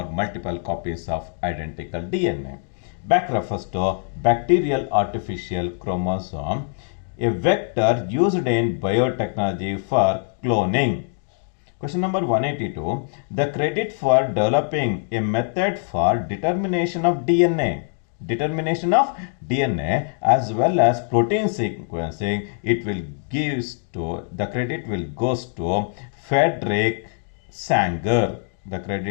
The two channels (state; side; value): silent; right; digital silence